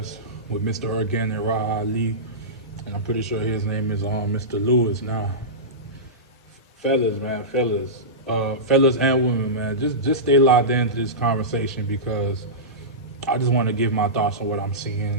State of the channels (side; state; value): both; normal; correlation -0.16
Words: with Mr. Ergan and Raha Ali. And I'm pretty sure his name is Mr. Lewis now. Fellas, man, fellas and women, man, just stay locked into this conversation because I just want to give my thoughts on what I'm